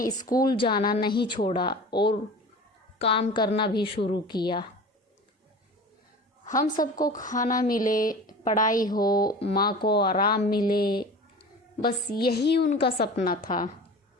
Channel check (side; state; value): both; normal; correlation 0.37